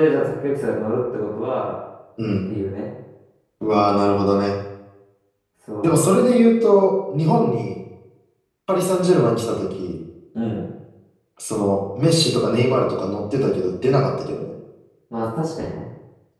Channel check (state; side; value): identical; both; correlation 1.00